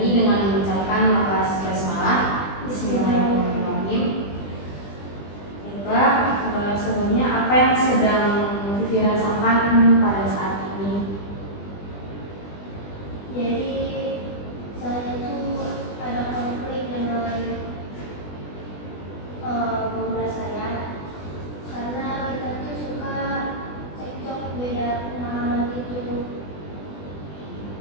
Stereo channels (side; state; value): right; late; 20 ms